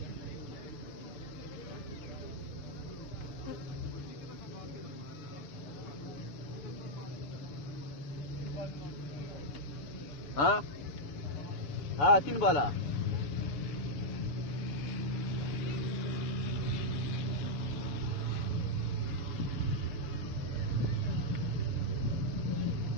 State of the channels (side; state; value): right; late; 6.9 ms